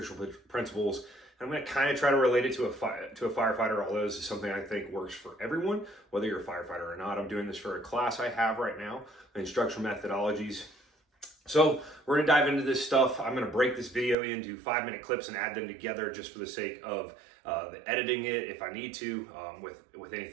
principles. I'm going to kind of try to relate it to a firefighter, although this is something I think works for everyone, whether you're a firefighter or not. I'm doing this for a class I have right now, instructional methodologies. So we're going to dive into this stuff. I'm going to break this video into 5-minute clips and add them together just for the sake of editing it if I need to, with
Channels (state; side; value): drops out; left; at 14.2 s